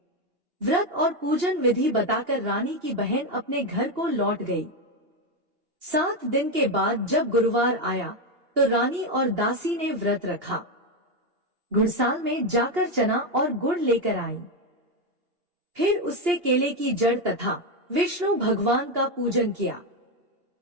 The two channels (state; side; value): late; left; 2.8 ms